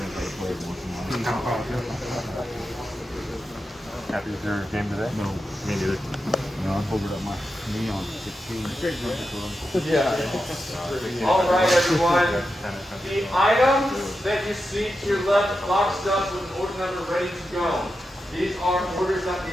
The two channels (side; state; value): both; normal; correlation 0.89